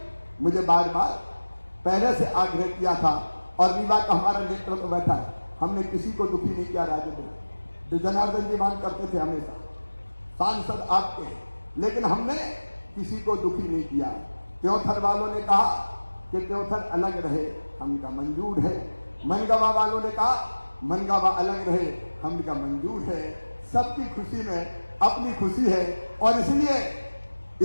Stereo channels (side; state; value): both; inverted; correlation -1.00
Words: मुझे बार बार पहले से आग्रह किया था, और रीवा का हमारा नेतृत्व बैठा है, हमने किसी को दुखी नहीं किया। राजेंद्र जनार्दन जी मांग करते थे हमेशा, सांसद आपके, लेकिन हमने किसी को दुखी नहीं किया। त्योथर वालों ने कहा कि त्योथर अलग रहे, हमका मंजूर है। मनगावा वालों ने कहा मनगावा अलग रहे, हमका मंजूर है। सबकी खुशी में अपनी खुशी है, और